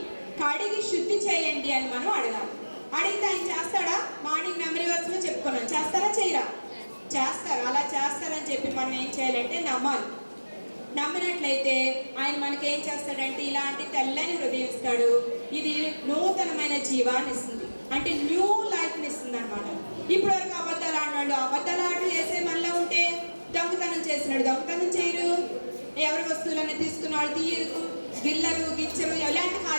కడిగి శుద్ధి చేయండి అని మనం అడగాలి. అడిగితే ఆయన చేస్తాడా? మార్నింగ్ మెమరీ వర్స్లో చెప్పుకున్నాం. చేస్తారా చేయరా? చేస్తారు. అలా చేస్తారని చెప్పి మనం ఏం చేయాలంటే నమ్మాలి. నమ్మినట్లయితే ఆయన మనకి ఏం చేస్తాడంటే ఇలాంటి తెల్లని హృదయం ఇస్తాడు. ఇది నూతనమైన జీవాన్ని ఇస్తుంది, అంటే న్యూ లైఫ్ని ఇస్తుంది అనమాట. ఇప్పటి వరకు అబద్ధాలు ఆడినాడు, అబద్ధాలు ఆటలు వేసే మనలో ఉంటే దొంగతనం చేసినాడు, దొంగతనం చేయరు, ఎవరి వస్తువులన్నీ తీసుకున్న వాళ్ళు తీయరు, గిల్లరు గిచ్చరు, ఎలాంటి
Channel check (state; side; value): inverted; both; correlation -1.00